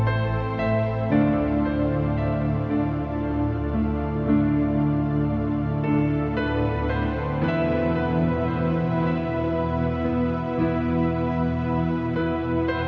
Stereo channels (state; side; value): identical; both; correlation 1.00